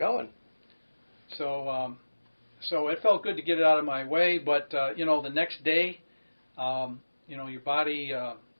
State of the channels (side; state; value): both; inverted; correlation -1.00